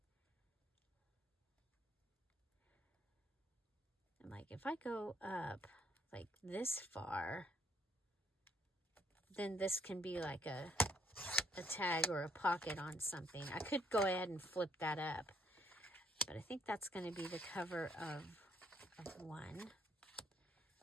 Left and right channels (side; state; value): both; normal; correlation 0.66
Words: And like if I go up like this far, then this can be like a tag or a pocket on something. I could go ahead and flip that up, but I think that's going to be the cover of one.